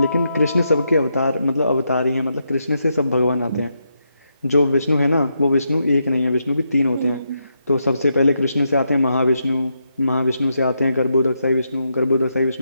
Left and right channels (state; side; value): inverted; both; correlation -0.82